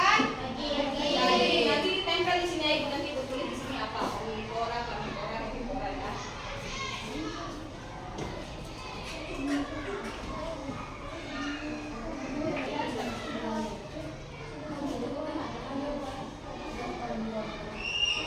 daging. Nanti ditempel di sini ya Ibu, nanti Ibu tulis di sini apa? Omnivora, karnivora, herbivora ya.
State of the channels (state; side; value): identical; both; correlation 1.00